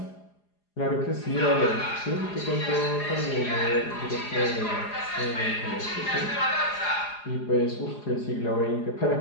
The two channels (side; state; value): right; late; 4.9 ms